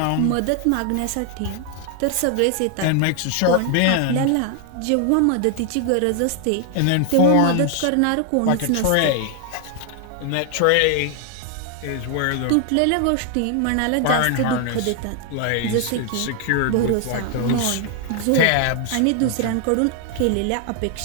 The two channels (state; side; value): different; both; correlation 0.00